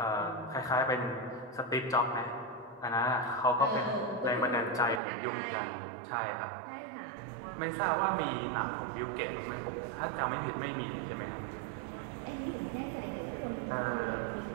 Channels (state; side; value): drops out; left; at 5.0 s